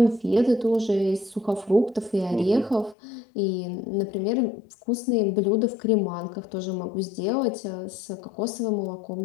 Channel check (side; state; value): right; drops out; at 3.0 s